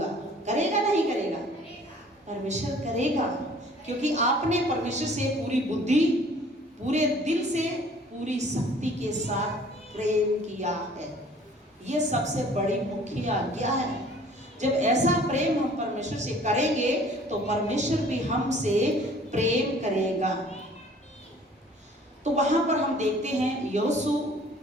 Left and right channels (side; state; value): both; normal; correlation 0.53